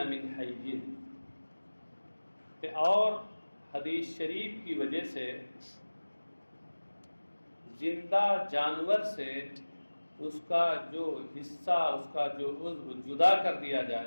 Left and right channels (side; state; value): both; inverted; correlation -1.00